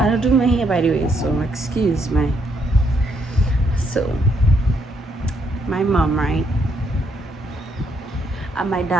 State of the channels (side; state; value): both; normal; correlation 0.74